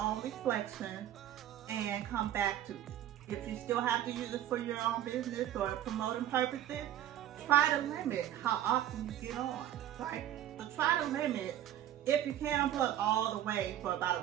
reflection, and come back to it. If you still have to use it for your own business or promoting purposes, try to limit how often you get on, right? So try to limit, if you can't unplug all the way for about a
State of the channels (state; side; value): quieter; left; 11.7 dB